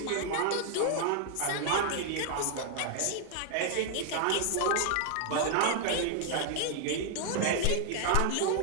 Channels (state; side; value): different; both; correlation 0.00